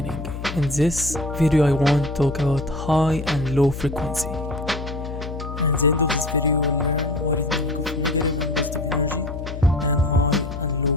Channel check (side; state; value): left; noise; hum, 8 dB below the sound